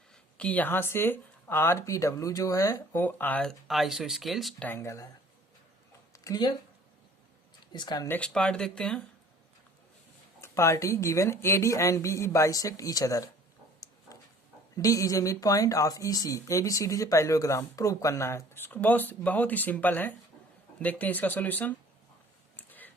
कि यहां से आर पी डब्ल्यू जो है वो आइसोस्केलेस ट्रायंगल है। क्लियर, इसका नेक्स्ट पार्ट देखते हैं। Party given A D and B E bisect each other, D is a mid point of E C, A B C D से पैरेललोग्राम प्रूव करना है। इसको बहुत ही सिंपल है, देखते हैं इसका सॉल्यूशन।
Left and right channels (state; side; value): normal; both; correlation 0.51